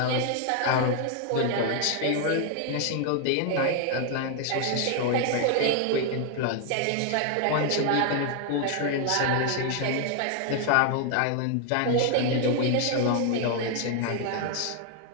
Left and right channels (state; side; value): different; both; correlation 0.00